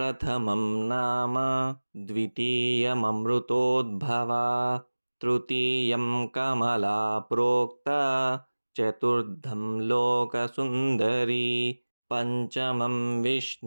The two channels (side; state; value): both; inverted; correlation -1.00